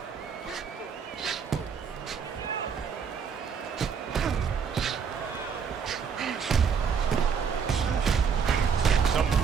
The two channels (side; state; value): left; quieter; 6.5 dB